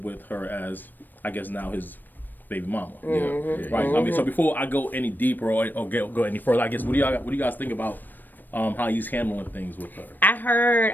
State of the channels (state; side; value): late; right; 0.090 ms